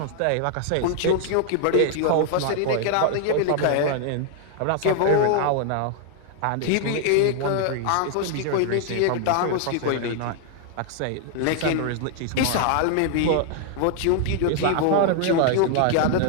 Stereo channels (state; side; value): different; both; correlation 0.00